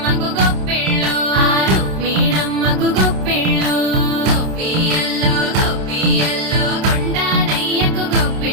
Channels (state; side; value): late; left; 27 ms